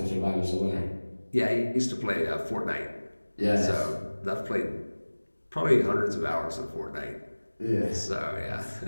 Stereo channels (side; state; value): both; inverted; correlation -1.00